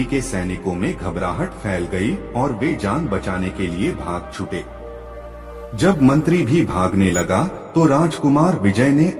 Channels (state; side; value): identical; both; correlation 1.00